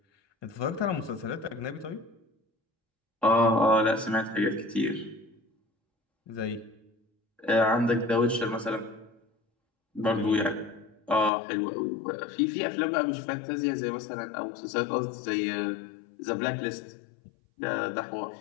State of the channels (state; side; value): drops out; right; at 11.3 s